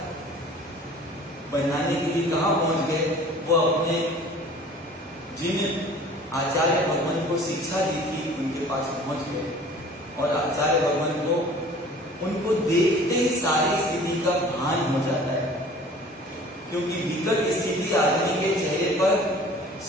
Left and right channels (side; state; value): both; normal; correlation 0.47